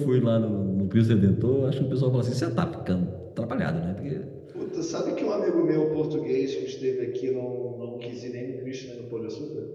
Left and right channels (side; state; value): both; identical; correlation 1.00